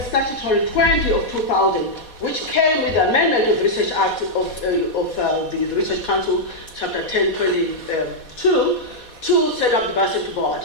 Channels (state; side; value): late; right; 4.2 ms